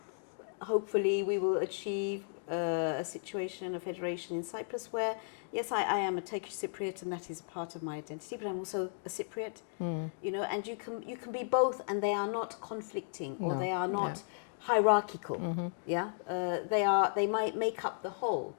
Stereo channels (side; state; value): right; silent; digital silence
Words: hopefully we will achieve a situation, a federation in Cyprus where, yes, I am a Turkish Cypriot and that is part of my identity, but I'm also a Cypriot, you know, and you can be both and they are not conflicting or they are not hierarchical, they might make up the whole,